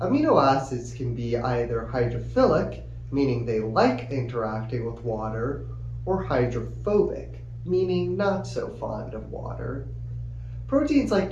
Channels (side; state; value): both; identical; correlation 1.00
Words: amino acids can be either hydrophilic, meaning they like interacting with water, or hydrophobic, meaning not so fond of water. Proteins like